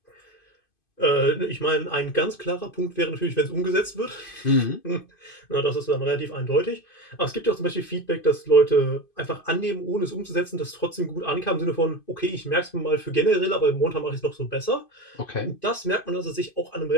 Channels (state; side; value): late; right; 2.5 ms